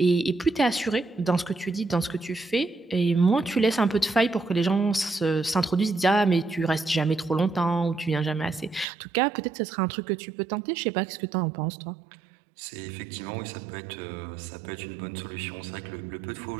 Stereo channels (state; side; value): drops out; left; at 8.8 s